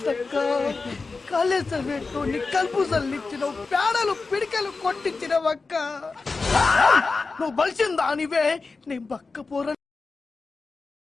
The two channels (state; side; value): quieter; right; 4.1 dB